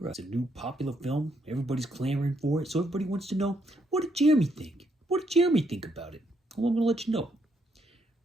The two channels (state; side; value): normal; both; correlation 0.74